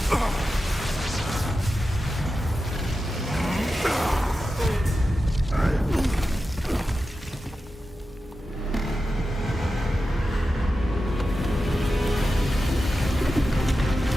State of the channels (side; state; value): both; normal; correlation 0.92